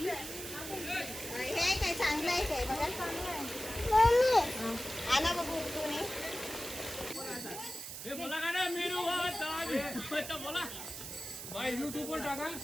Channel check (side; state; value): right; noise; hiss, 8 dB below the sound